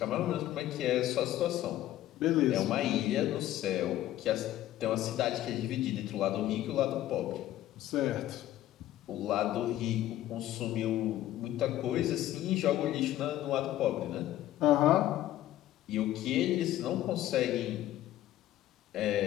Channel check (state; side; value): quieter; right; 13.7 dB